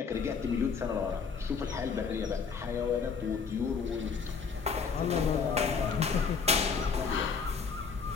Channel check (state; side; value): quieter; right; 5.6 dB